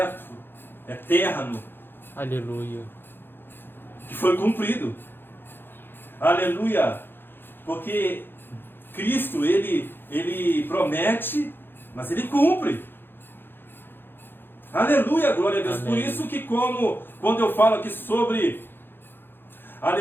eterno. Aleluia. Que foi cumprido. Aleluia. Porque Cristo, ele promete, mas Ele cumpre. Aleluia, glória a Deus. Amém. Por isso que quando eu falo aqui sobre,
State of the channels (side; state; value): right; late; 0.10 ms